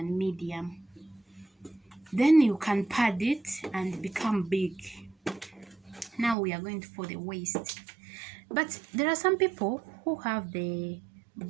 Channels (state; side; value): drops out; left; at 6.4 s